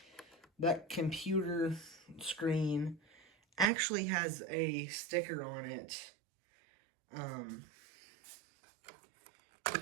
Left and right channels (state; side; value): drops out; left; at 3.7 s